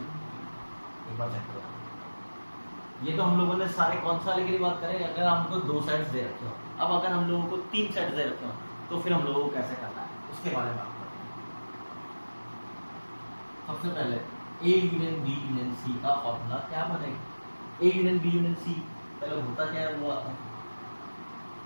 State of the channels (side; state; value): both; inverted; correlation -1.00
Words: एक बार चेक करो। ये तो हम लोगों ने सारे कौन सा वाले के लिए बात करें अगर हमको दो सेट्स दे रखे हो। अब अगर हम लोगों को तीन सेट्स दे रखे हो तो फिर हम लोगों को कैसे करना है उसके बारे में बात करते हैं। सबसे पहले A union B union C का फॉर्मूला क्या बनेगा A union B union C पहले होता क्या है वो आता है